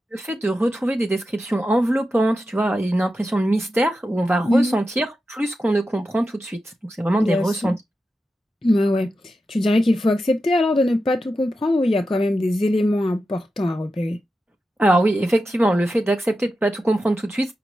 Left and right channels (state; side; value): normal; both; correlation 0.90